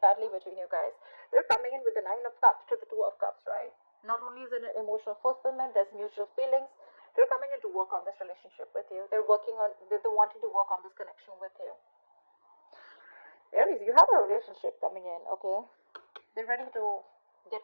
badly between you guys. They're coming in with the Nine of Cups to the Two of Cups, right? Not only is it an emotional fulfillment, there's mutual feelings. They're coming in to work on this relationship with you. They're wanting to work on this connection with you. Aries, you have a relationship coming in, okay? They're ready to get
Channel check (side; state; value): both; inverted; correlation -1.00